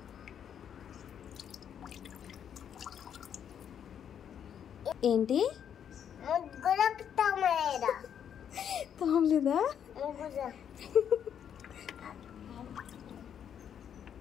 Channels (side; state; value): right; quieter; 8.7 dB